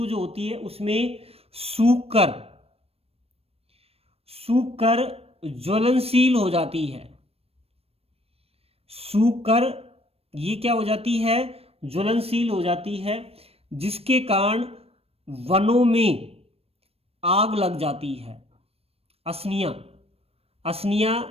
जो होती है उसमें सूख कर ज्वलनशील हो जाती है। सूख कर ये क्या हो जाती है? ज्वलनशील हो जाती है, जिसके कारण वनों में आग लग जाती है। असनिया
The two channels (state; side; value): late; left; 0.28 ms